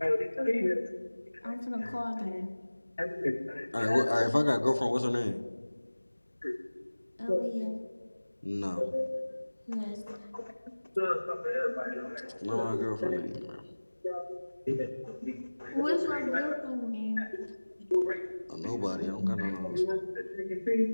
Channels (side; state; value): both; inverted; correlation -1.00